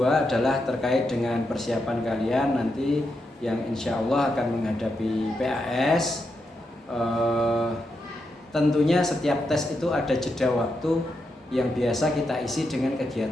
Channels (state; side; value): normal; both; correlation 0.84